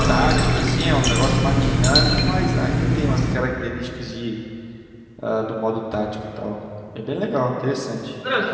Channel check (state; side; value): identical; both; correlation 1.00